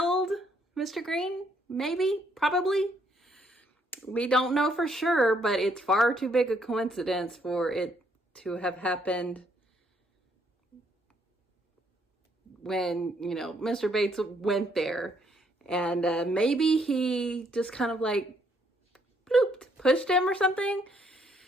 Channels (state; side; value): normal; both; correlation 0.70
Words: Mr. Green, maybe, probably. We don't know for sure, but it's far too big a coincidence for it to have happened when, Mr. Bates went there. And maybe he just kind of like blooped, pushed him or something.